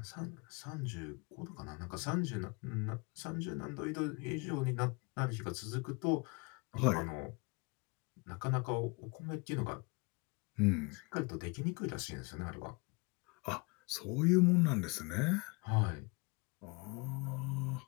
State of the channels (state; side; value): quieter; right; 29.0 dB